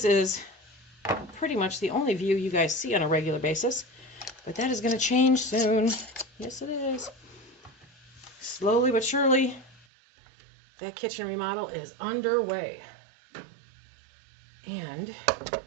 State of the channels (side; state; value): left; drops out; at 9.9 s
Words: is pretty much the only view you guys see on a regular basis, but that is going to change soon. Yes, it is. Slowly but surely, that kitchen remodel is underway. And